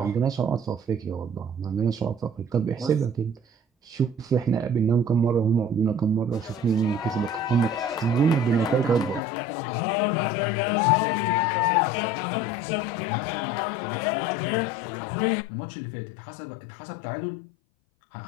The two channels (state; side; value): drops out; right; at 9.2 s